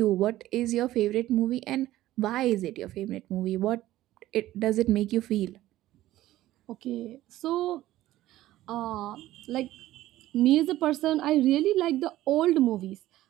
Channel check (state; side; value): quieter; left; 15.1 dB